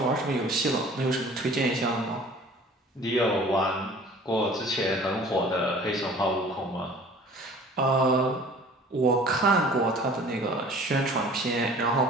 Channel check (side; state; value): both; normal; correlation 0.48